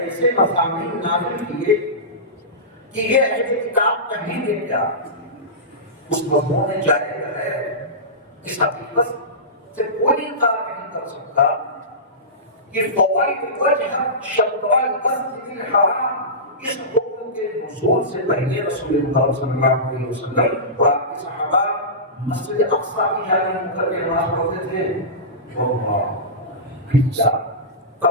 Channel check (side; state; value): both; normal; correlation -0.20